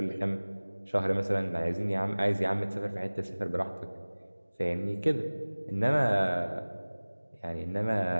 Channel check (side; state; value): both; inverted; correlation -1.00